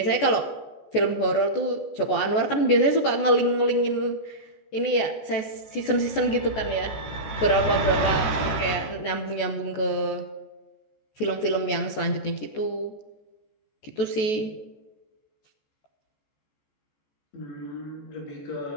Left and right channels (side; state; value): right; late; 14 ms